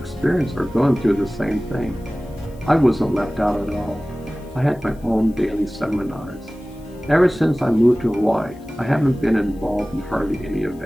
or going through the same thing. I wasn't left out at all. I had my own daily seminars. Ever since I moved to Hawaii, I haven't been involved in hardly any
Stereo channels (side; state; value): left; noise; hiss, 29 dB below the sound